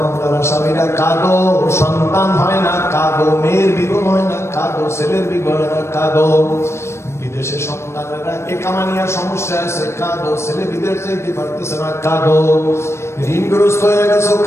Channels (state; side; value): late; right; 0.13 ms